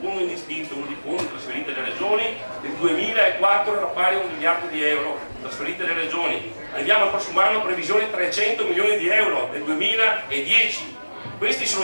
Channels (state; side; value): inverted; both; correlation -1.00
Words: fondi indistinto, di fondi trasferiti alle regioni, nel 2004 era pari a 1 miliardo di euro trasferiti alle regioni. Arriviamo al prossimo anno previsione 300 milioni di euro nel 2010. Questi